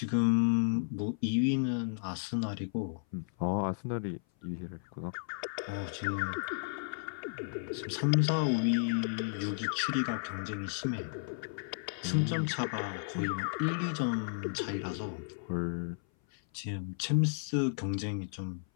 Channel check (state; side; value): silent; right; 55 dB below the other